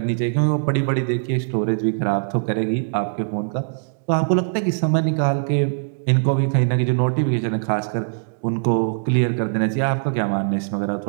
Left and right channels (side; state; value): left; silent; digital silence